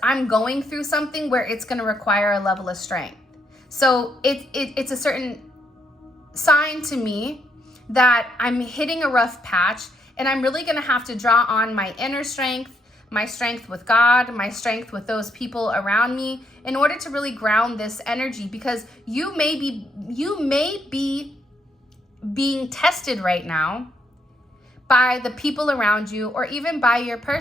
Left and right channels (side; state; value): both; normal; correlation 0.75